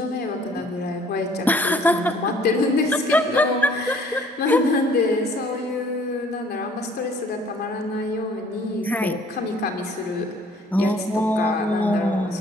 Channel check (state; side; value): normal; both; correlation 0.57